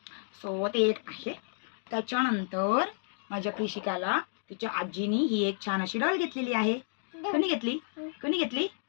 सो ते एक आहे. त्याच्यानंतर माझ्या कृषिकाला तिच्या आजीनी ही एक छान अशी डॉल घेतलेली आहे. कोणी घेतली, कोणी घेतली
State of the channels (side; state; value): right; silent; digital silence